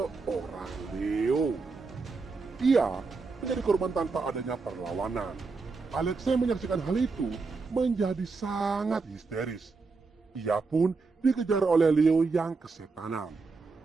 Leo. Ia menjadi korban tanpa adanya perlawanan. Alexa yang menyaksikan hal itu menjadi sangat histeris. Ia pun dikejar oleh Leo yang kesetanan.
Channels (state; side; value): quieter; left; 4.3 dB